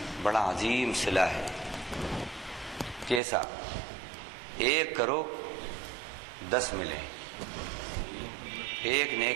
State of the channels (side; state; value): left; drops out; at 3.2 s